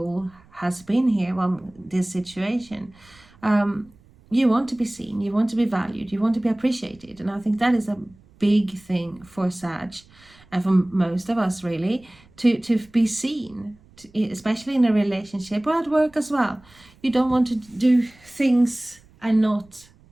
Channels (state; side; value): noise; right; rumble, 28 dB below the sound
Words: has been here on this situation. You want to be seen. You want to be valued. You want to be appreciated. And I think that is a big thing for Sag and for most of us, really, to be seen. especially in a relationship or at work as well. You don't want to do things and